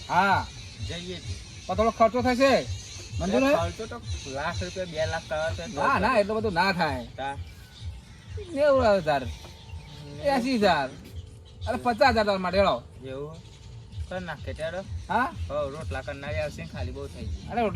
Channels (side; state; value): both; identical; correlation 1.00